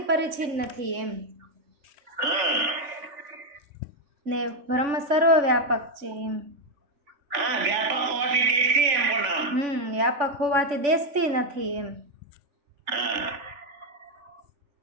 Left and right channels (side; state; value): left; late; 3.5 ms